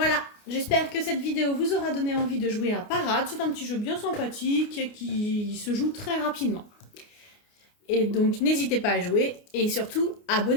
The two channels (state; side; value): late; right; 29 ms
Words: j'espère que cette vidéo vous aura donné envie de jouer à Parade. C'est un petit jeu bien sympathique qui se joue très rapidement. Et donc, n'hésitez pas à jouer et surtout,